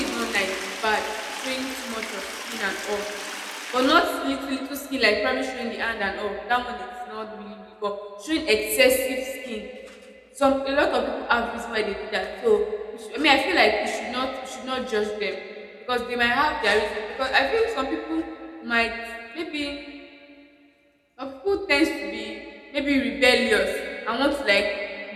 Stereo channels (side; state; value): both; identical; correlation 1.00